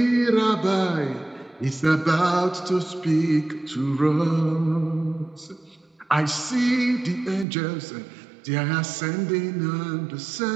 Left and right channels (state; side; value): drops out; left; at 7.5 s